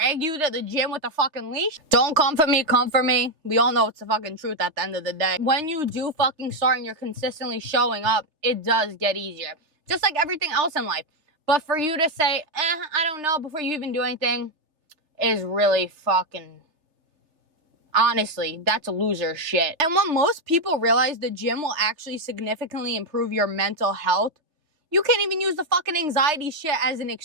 you to the gym with a fucking leash? Don't come for me, come for me. We all know it's the fucking truth at the end of the day. When you do fucking start and you're consistently showing up, it does get easier. Just like everything else in life. But for you to say, I don't know, before you even do anything, is really fucking... Honestly, that's loser shit. And when most people realize the gym will actually significantly improve your mental health, you can't even use the fucking anxiety shit as an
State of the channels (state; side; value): late; left; 3.3 ms